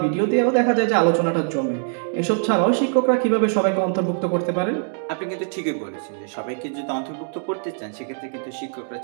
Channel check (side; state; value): left; silent; digital silence